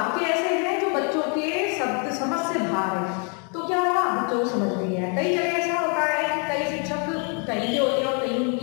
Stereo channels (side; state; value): right; quieter; 38.0 dB